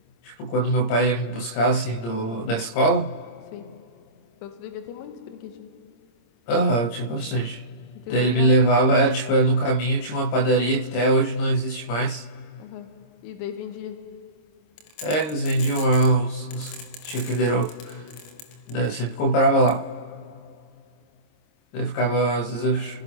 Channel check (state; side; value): late; right; 26 ms